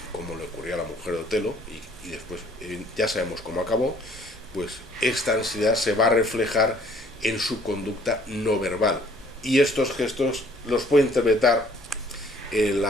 como le ocurrió a la mujer de Otelo, y después ya sabemos cómo acabó. Pues esta ansiedad se va a reflejar en su conducta no verbal, y estos gestos los puede interpretar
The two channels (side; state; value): both; normal; correlation 0.59